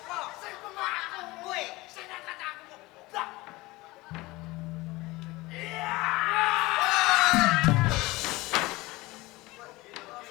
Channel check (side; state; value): right; quieter; 21.0 dB